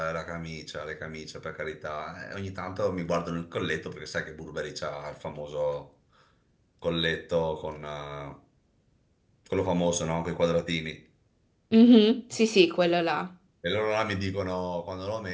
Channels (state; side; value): identical; both; correlation 1.00